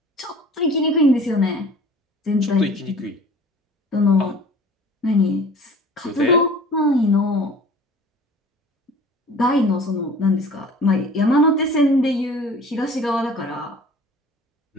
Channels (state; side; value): normal; both; correlation 0.45